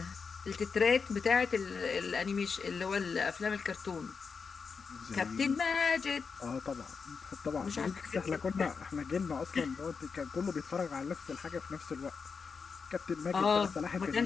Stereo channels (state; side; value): quieter; right; 5.4 dB